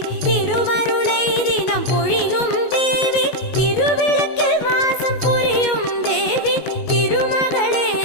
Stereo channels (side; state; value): right; late; 19 ms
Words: திருவருளை தினம் பொழியும் தேவி, திருவிளக்கில் மாசம் புரியும் தேவி, திருமகளே